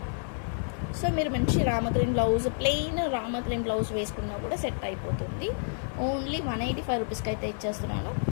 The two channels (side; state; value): right; silent; 58 dB below the other